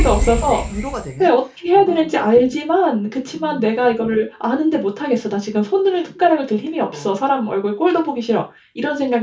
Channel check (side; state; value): both; identical; correlation 1.00